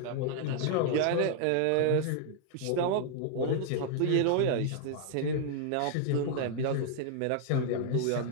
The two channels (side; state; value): both; different; correlation 0.00